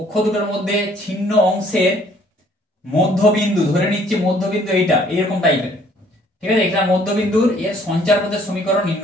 দুটোর মধ্যে ছিন্ন অংশের মধ্যবিন্দু, ধরে নিচ্ছে মধ্যবিন্দু এইটা এরকম টাইপের, ঠিক আছে। এটা মধ্যবিন্দুর এর সঞ্চারপথের সমীকরণ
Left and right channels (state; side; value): normal; both; correlation 0.60